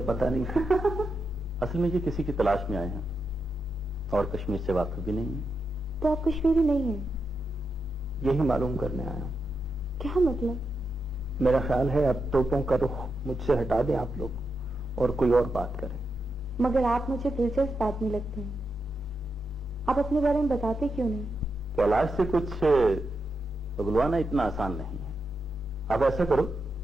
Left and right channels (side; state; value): both; normal; correlation 0.86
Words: पता नहीं था। असल में ये किसी की तलाश में आए हैं और कश्मीर से वाकिफ भी नहीं है। तो आप कश्मीरी नहीं हैं? यही मालूम करने आया हूँ। क्या मतलब? मेरा ख्याल है अब तोपों का रुख मुझसे हटा दें आप लोग और कोई और बात करें। मगर आप मुझे दिलचस्प आदमी लगते हैं, आप अपने बारे में बताते क्यों नहीं? कैलाश से कुछ उगलवाना इतना आसान नहीं है। आप ऐसा करो,